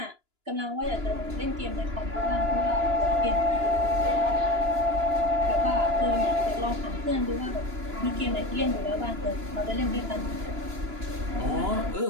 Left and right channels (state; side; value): late; left; 2.9 ms